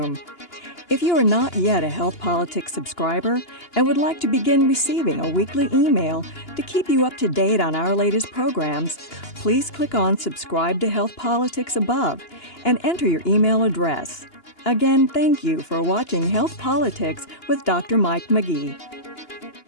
If you are not yet a Health Politics subscriber and would like to begin receiving a weekly email to keep you up to date on our latest programs, please click on Subscribe to Health Politics above and enter your email address. Again, thank you for watching Health Politics with Dr. Mike McGee.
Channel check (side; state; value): right; late; 2.9 ms